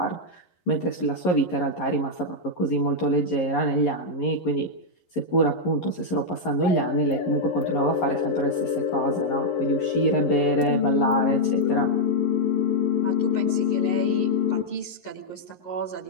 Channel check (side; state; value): right; late; 11 ms